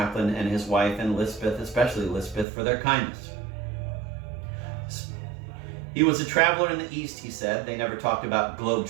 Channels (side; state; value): left; drops out; at 2.5 s